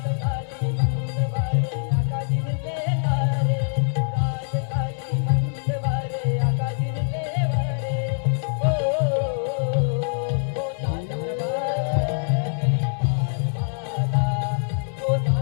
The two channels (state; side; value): silent; right; 63 dB below the other